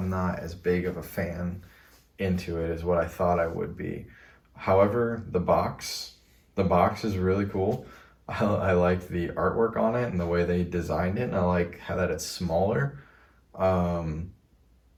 not as big of a fan into it as what I thought I would be. However, the box is really cool. I like the artwork on it and the way they designed it, and I like how that it's smaller. Um,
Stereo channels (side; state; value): both; identical; correlation 1.00